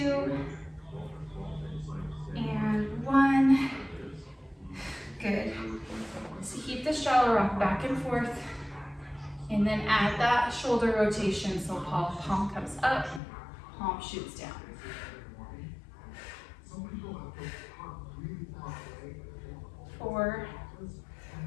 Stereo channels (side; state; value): right; drops out; at 13.2 s